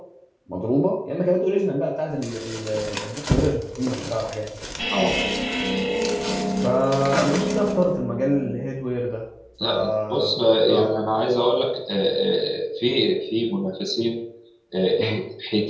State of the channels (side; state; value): both; identical; correlation 1.00